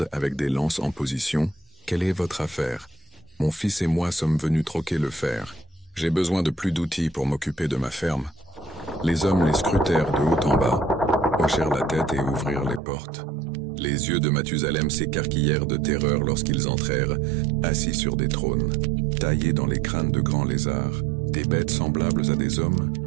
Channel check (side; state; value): left; drops out; at 12.8 s